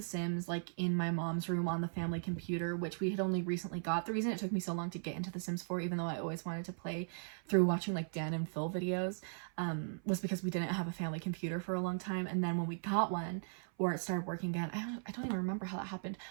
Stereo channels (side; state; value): left; silent; 52 dB below the other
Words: Sims like in my mom's room on the family computer, which we had only recently got. The reason it took me so long to get into The Sims 4, even though I always wanted to play through watching like Dan and Phil videos, was because we didn't have a family computer for a long time. And then when we got one, or it started working again, I don't even remember how that happened,